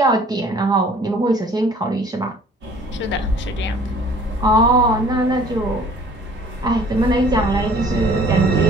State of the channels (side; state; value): both; normal; correlation 0.53